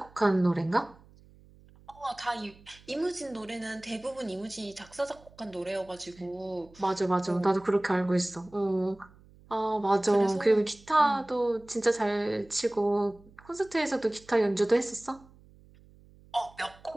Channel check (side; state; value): right; noise; hum, 25 dB below the sound